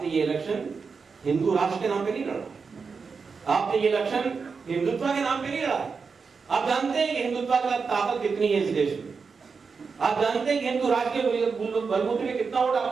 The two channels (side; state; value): left; quieter; 5.2 dB